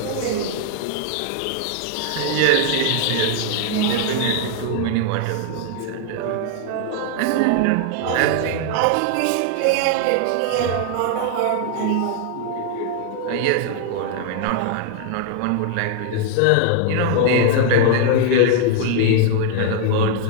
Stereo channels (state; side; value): different; both; correlation 0.00